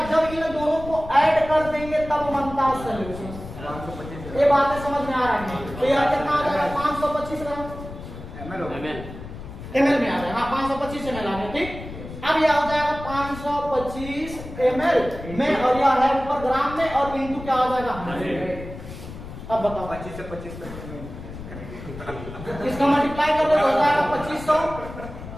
जब इन दोनों को ऐड कर देंगे तब बनता है सॉल्यूशन, ये बातें समझ में आ रही है। तो यह कितना आ जाएगा 525 ग्राम ml में आ जाएगा, हाँ 525 ml आ गया, ठीक। अब यह हो जाएगा 525 ml में, और यह है ऊपर ग्राम में, और इनटू क्या हो जाएगा 100। अब बताओ 25 से 25 तक इसका मल्टीप्लाई कर दो हो जाएगा 2500,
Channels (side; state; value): left; noise; rumble, 12 dB below the sound